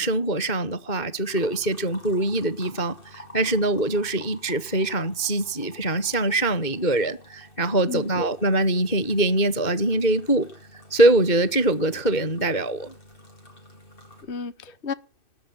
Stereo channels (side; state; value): right; late; 2.6 ms